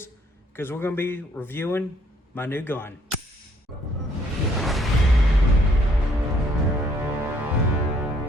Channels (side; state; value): both; normal; correlation 0.65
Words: because we're going to be reviewing my new gun.